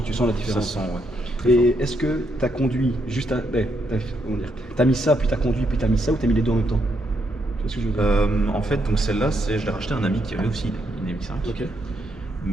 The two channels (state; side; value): normal; both; correlation 0.77